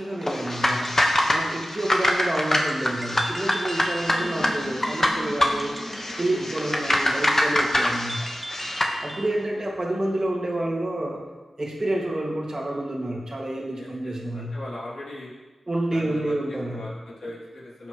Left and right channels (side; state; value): both; normal; correlation 0.95